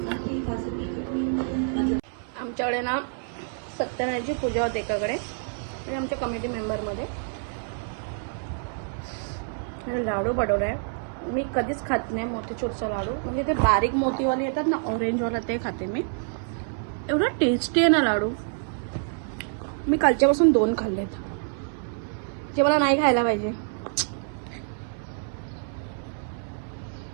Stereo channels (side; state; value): left; silent; 60 dB below the other